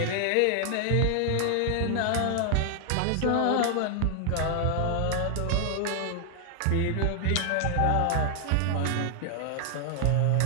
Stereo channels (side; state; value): both; different; correlation 0.00